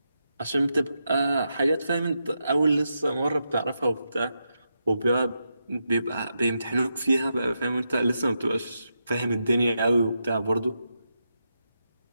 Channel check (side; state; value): both; inverted; correlation -0.85